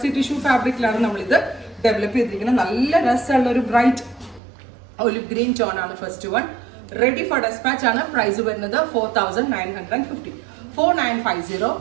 ടിഷ്യൂ ഫാബ്രിക്കിലാണ് നമ്മളിത് ഡെവലപ്പ് ചെയ്തിരിക്കുന്നത്. നല്ല രസമുള്ള ഒരു ബ്രൈറ്റ് ഒലിവ് ഗ്രീൻ ടോൺ ആണ് first one. Ready for dispatch ആണ്. പ്രൈസ് വരുന്നത് 4950 4950.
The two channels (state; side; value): drops out; left; at 4.4 s